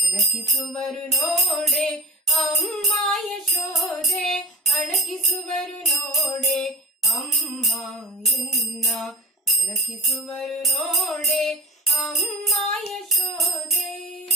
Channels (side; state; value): both; normal; correlation 0.35